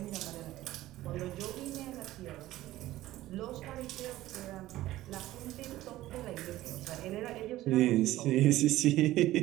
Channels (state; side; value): quieter; left; 15.7 dB